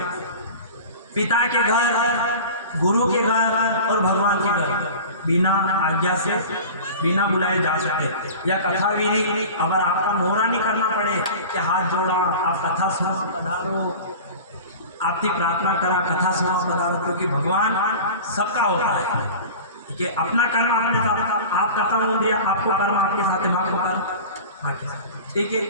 पिता के घर, गुरु के घर और भगवान के घर बिना आज्ञा से, बिना बुलाए जा सकते। या कथा विधि, अगर आपका मोहरा नहीं करना पड़े कि हाथ जोड़ा, आप कथा सुना पधारो, आपकी प्रार्थना करा, कथा सुना पधारो, क्योंकि भगवान सबका होता है। ठीक है, अपना कर्म आपने साथ, आप कथा हो दिया, आपको कर्म आपके साथ, माँ को कर्म। ठीक है,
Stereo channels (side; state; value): both; inverted; correlation -0.35